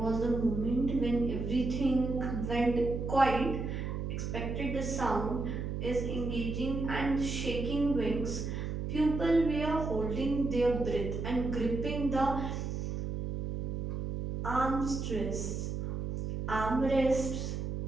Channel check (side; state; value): right; noise; hum, 3 dB below the sound